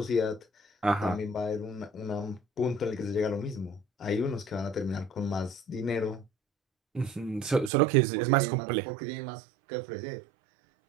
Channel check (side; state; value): left; drops out; at 7.7 s